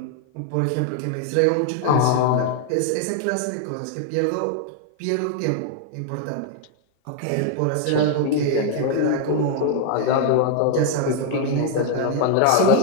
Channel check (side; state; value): both; different; correlation 0.00